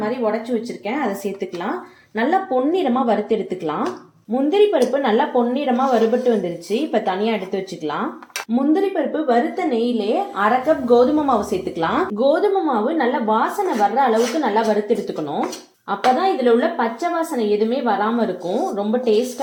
மாதிரி உடைச்சு வச்சிருக்கேன், அதை சேர்த்துக்கலாம். நல்லா பொன்னிறமா வறுத்து எடுத்துக்கலாம். முந்திரி பருப்பு நல்லா பொன்னிறமா வறுபட்டு வந்துருச்சு. இப்ப தனியா எடுத்து வச்சுக்கலாம். முந்திரி பருப்பு வறுத்த நெய்யிலே 1/2 கப் கோதுமை மாவு சேர்த்துக்கலாம். கோதுமை மாவு நல்லா வாசனை வர்ற அளவுக்கு நல்லா வறுத்து எடுத்துக்கணும். அப்பதான் இதுல உள்ள பச்சை வாசனை எதுவுமே வராம இருக்கும். ரொம்ப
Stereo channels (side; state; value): both; identical; correlation 1.00